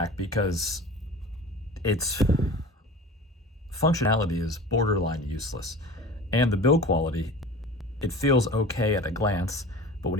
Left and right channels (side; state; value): both; normal; correlation 0.37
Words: because its functionality is borderline useless. And the build quality, it feels okay at a glance, but when